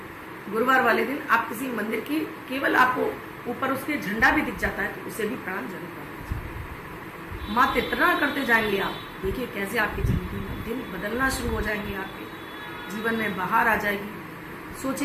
गुरुवार वाले दिन आप किसी मंदिर की केवल आपको ऊपर उसके झंडा भी दिख जाता है तो उसे भी प्रणाम जरूर कर दीजिए। मात्र इतना करते जाएंगे आप, देखिए कैसे आपकी जिंदगी में दिन बदलना शुरू हो जाएंगे, आपके जीवन में बाहर आ जाएगी,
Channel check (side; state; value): both; identical; correlation 1.00